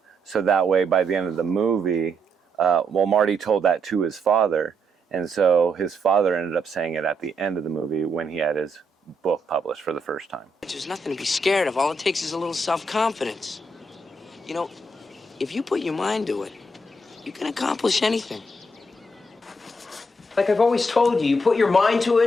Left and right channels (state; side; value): normal; both; correlation 0.77